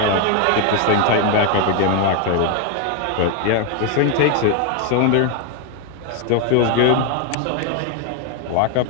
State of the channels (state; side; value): different; both; correlation 0.01